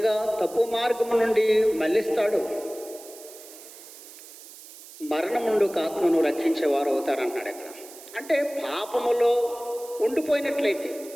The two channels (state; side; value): noise; right; hiss, 18 dB below the sound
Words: తప్పు మార్గం నుండి మళ్ళిస్తాడో మరణం నుండి ఒక ఆత్మను రక్షించేవారు అవుతారన్నాడు. అక్కడ అంటే పాపములో ఉండిపోయినట్లయితే